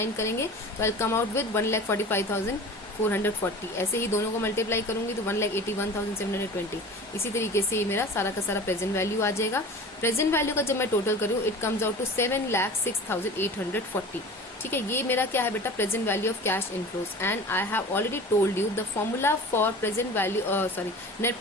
करेंगे तो आई कम आउट विद 1,45,440. ऐसे ही दोनों को मल्टीप्लाई करूंगी तो 1,81,720. इसी तरीके से ये मेरा सारा का सारा प्रेजेंट वैल्यू आ जाएगा. प्रेजेंट वैल्यू का जब मैं टोटल करूँ इट कम्स आउट टू 7,06,840. ठीक है, ये मेरा क्या है बेटा, present value of cash inflows. And I have already told you the formula for present value, sorry, net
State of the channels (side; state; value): both; normal; correlation 0.38